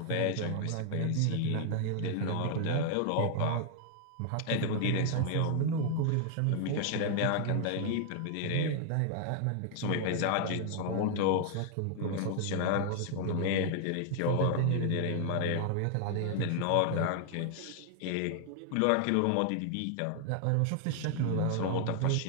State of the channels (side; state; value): both; different; correlation 0.00